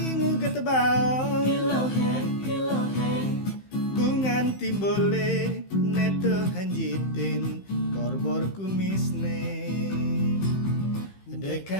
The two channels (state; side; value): late; right; 15 ms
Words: ngugut baong bungan timbole neto hanjitin borbor kumisne